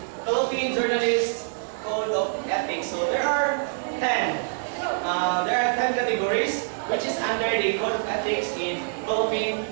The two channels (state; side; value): silent; left; digital silence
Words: Philippine Journalist Code of Ethics. So, there are 10. There are 10 categories, which is under the Code of Ethics in Philippine